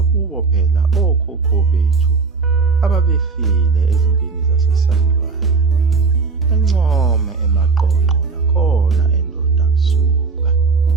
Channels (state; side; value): quieter; left; 4.6 dB